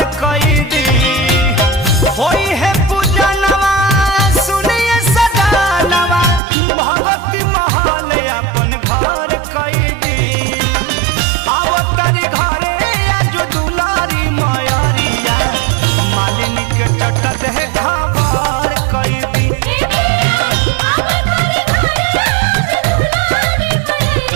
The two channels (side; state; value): left; drops out; at 6.4 s